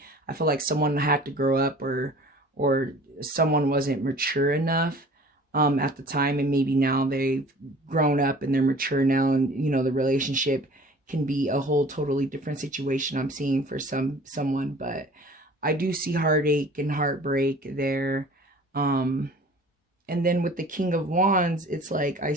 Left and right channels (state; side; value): normal; both; correlation 0.47